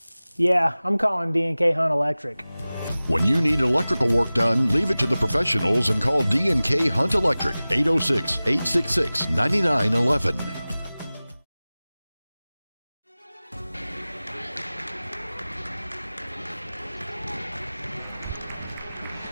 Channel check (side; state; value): both; inverted; correlation -0.98